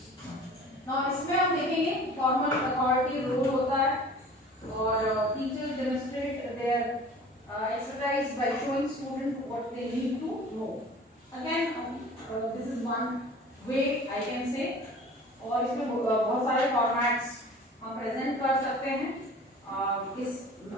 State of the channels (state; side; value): normal; both; correlation 0.44